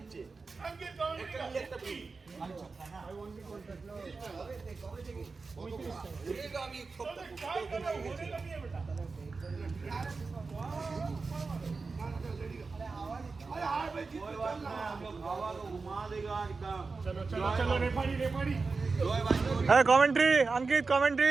अंकित कमेंट একটা free I want to contact लो होगा আমি काय करो होने लगी है बेटा अरे हां भाई कोई बात नहीं हम लोग हवा को घुमा देगा एकदम चलो चलो चलो रेफरी जोय भाई Hey, commentary, Ankit,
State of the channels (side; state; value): left; quieter; 4.2 dB